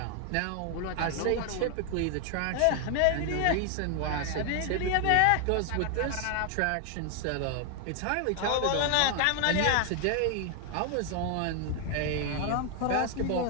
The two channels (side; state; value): both; different; correlation 0.00